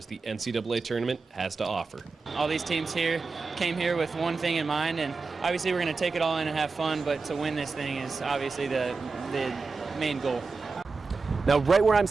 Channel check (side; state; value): left; quieter; 4.3 dB